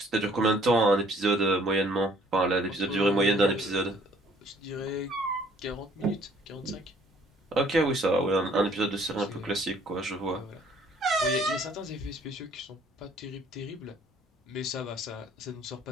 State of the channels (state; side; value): normal; both; correlation 0.59